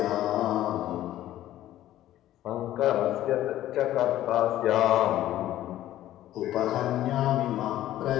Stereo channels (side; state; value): right; quieter; 13.5 dB